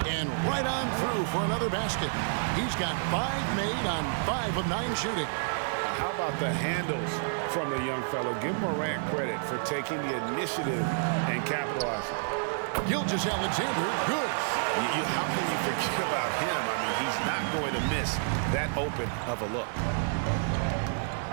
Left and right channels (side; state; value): left; silent; digital silence